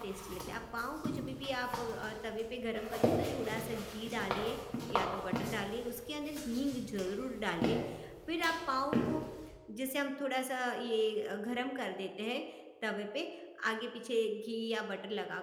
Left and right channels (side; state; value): both; identical; correlation 1.00